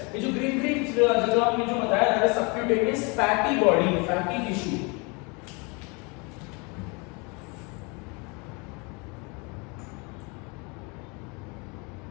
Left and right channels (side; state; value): right; quieter; 30.1 dB